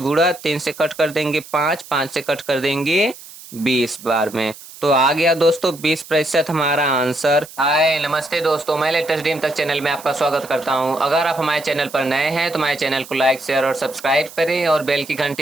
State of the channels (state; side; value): noise; right; hiss, 17 dB below the sound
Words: 3 से कट कर देंगे 5, 5 से कट कर देंगे 20 बार में। तो आ गया दोस्तों 20% हमारा आंसर। हाय नमस्ते दोस्तों, मैं लेटेस्ट ड्रीम तक चैनल में आपका स्वागत करता हूं। अगर आप हमारे चैनल पर नए हैं तो हमारे चैनल को लाइक शेयर और सब्सक्राइब करें और बेल की